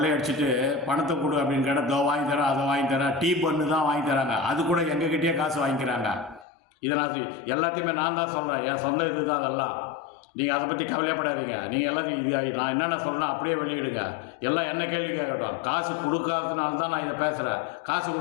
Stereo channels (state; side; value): drops out; right; at 6.5 s